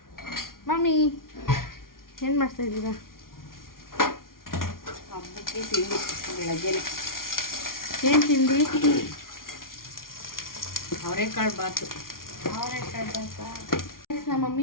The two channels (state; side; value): late; right; 0.92 ms